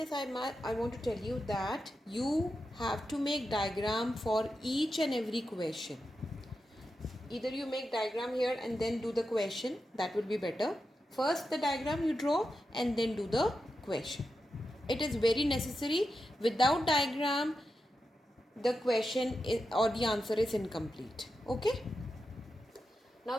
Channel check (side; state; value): both; normal; correlation 0.89